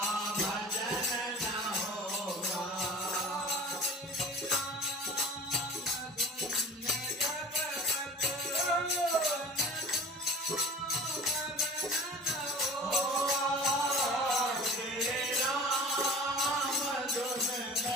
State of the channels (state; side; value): normal; both; correlation 0.40